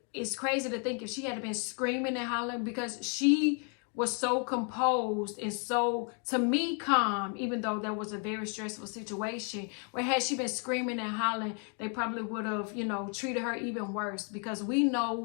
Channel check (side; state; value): right; quieter; 39.9 dB